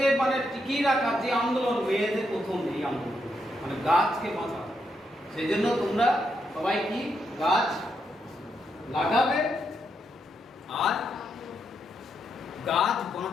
মানে টিকিয়ে রাখার যে আন্দোলন, মেয়েদের প্রথম এই আন্দোলন, মানে গাছকে বাঁচানো। সেই জন্য তোমরা সবাই কি গাছ লাগাবে আর গাছ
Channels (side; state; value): both; normal; correlation 0.80